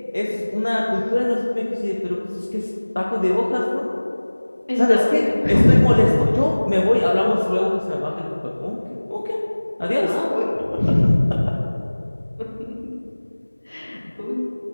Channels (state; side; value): inverted; both; correlation -1.00